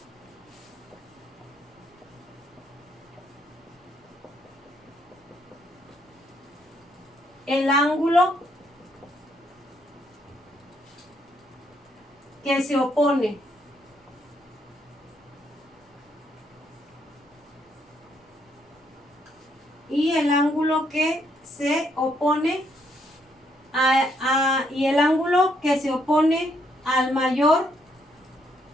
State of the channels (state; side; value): normal; both; correlation 0.73